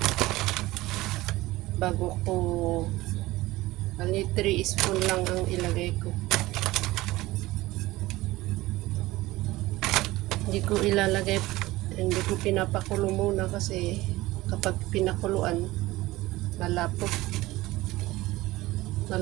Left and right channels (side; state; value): left; quieter; 18.7 dB